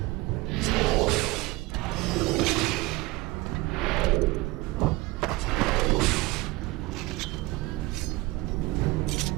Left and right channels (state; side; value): quieter; left; 21.5 dB